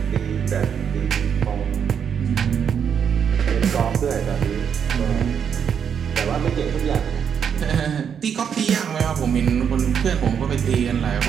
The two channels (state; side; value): quieter; left; 7.6 dB